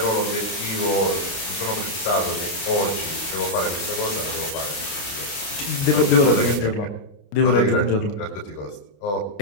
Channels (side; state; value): right; late; 29 ms